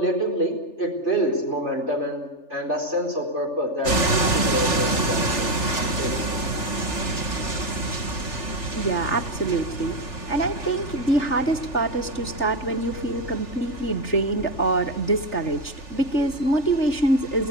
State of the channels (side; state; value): right; late; 3.4 ms